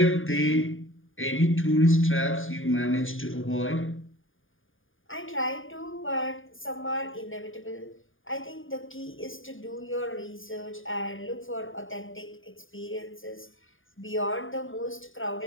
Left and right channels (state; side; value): late; right; 0.58 ms